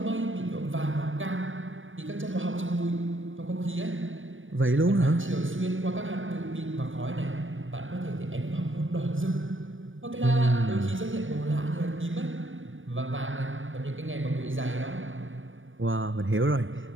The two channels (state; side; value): late; left; 0.57 ms